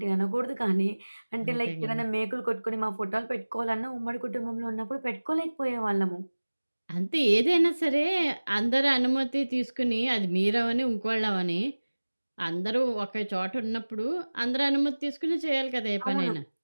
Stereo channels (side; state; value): both; inverted; correlation -1.00